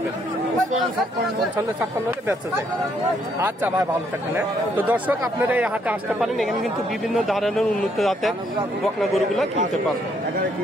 55-56 হলে বেচা যায়। আচ্ছা ভাই, ভালো থাকবেন। তো দর্শক, আপনারা এই হাটে আসতে পারেন। এখানে কিন্তু বিভিন্ন ধরনের উন্নত জাতের বকনা গরুগুলো কিনতে পারবেন।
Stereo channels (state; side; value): normal; both; correlation 0.70